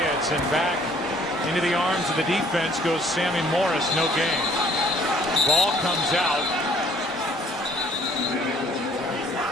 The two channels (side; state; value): both; normal; correlation 0.59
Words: and back into the arms of the defense goes Sammy Morris. No gain. Ball comes out.